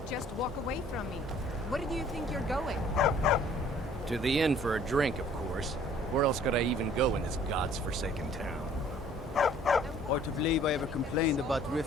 just walk away from me. Where do you think you're going? To the inn for a drink, of course. Where else could I even go in this god's-forsaken town? Hard to believe I ever complained about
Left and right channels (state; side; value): normal; both; correlation 0.55